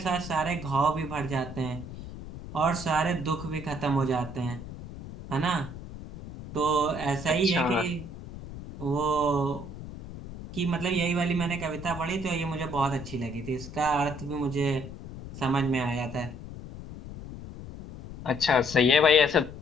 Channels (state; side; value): noise; left; rumble, 12 dB below the sound